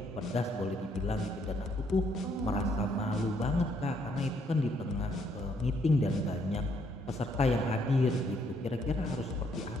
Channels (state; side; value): normal; both; correlation 0.70